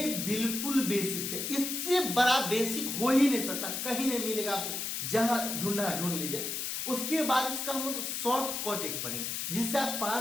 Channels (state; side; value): noise; left; hiss, 3 dB below the sound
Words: बिल्कुल बेसिक है, इससे बड़ा बेसिक हो ही नहीं सकता, कहीं नहीं मिलेगा। आप जहां ढूंढना ढूंढ लीजिए। उसके बाद इसका हम लोग शॉर्ट कट एक पढ़ेंगे जिससे आप